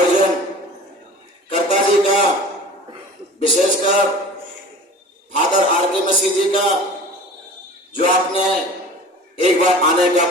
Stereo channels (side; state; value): both; normal; correlation 0.41